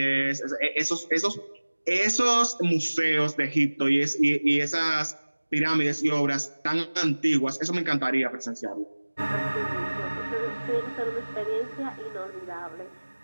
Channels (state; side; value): inverted; both; correlation -1.00